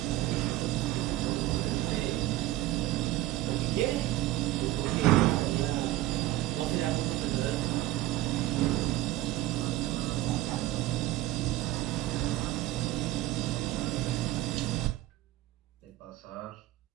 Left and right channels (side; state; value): left; quieter; 15.7 dB